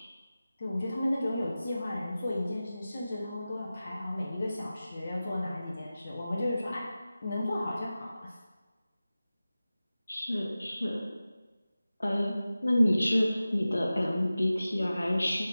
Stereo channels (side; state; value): both; inverted; correlation -0.95